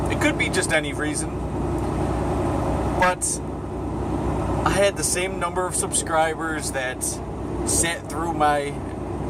It could be just any reason, but I had the same number of subscribers that sat through my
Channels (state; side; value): identical; both; correlation 1.00